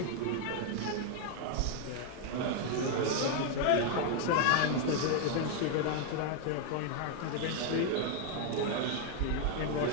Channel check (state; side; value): different; both; correlation 0.00